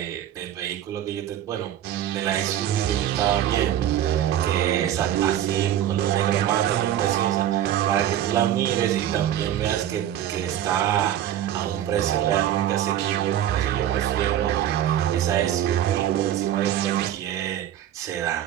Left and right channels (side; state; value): left; quieter; 11.3 dB